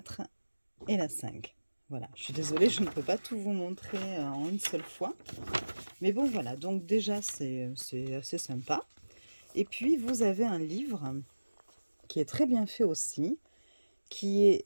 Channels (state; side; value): inverted; both; correlation -1.00